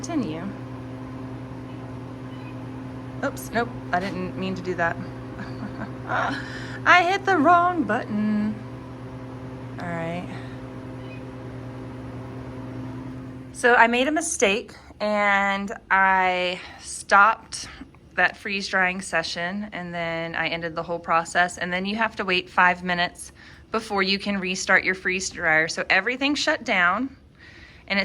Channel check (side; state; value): both; identical; correlation 1.00